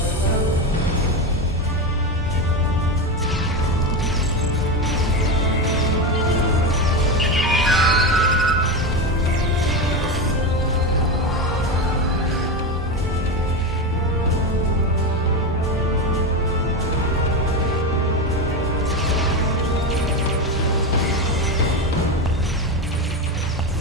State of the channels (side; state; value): both; normal; correlation 0.17